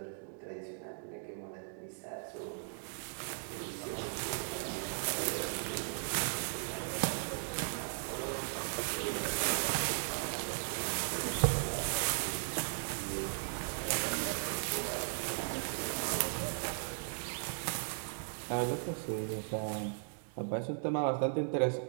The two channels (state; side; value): silent; left; digital silence